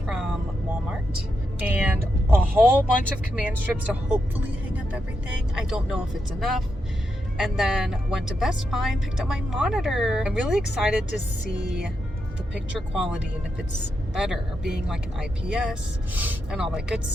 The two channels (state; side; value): normal; both; correlation 0.85